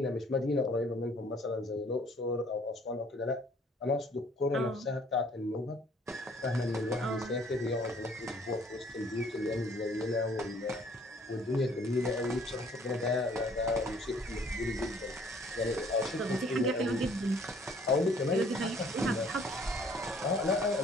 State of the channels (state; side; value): normal; both; correlation 0.58